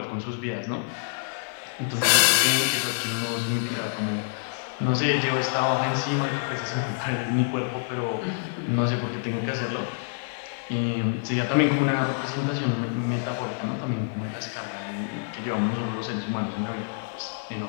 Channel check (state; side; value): silent; right; 60 dB below the other